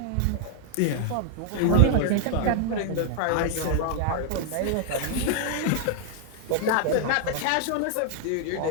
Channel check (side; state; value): both; different; correlation 0.00